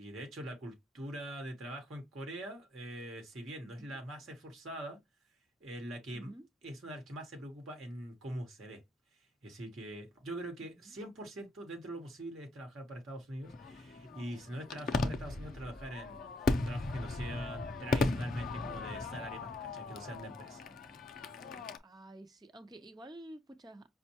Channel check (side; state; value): both; normal; correlation 0.73